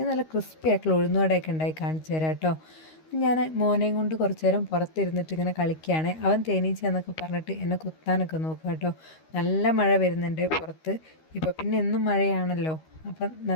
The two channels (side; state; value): right; late; 13 ms